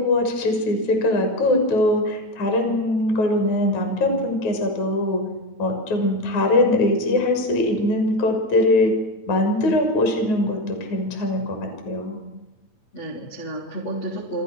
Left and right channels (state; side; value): late; right; 8.9 ms